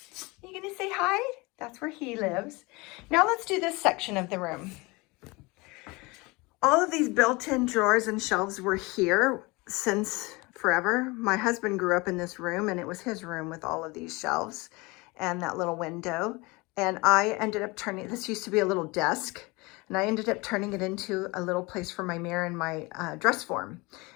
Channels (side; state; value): right; quieter; 24.9 dB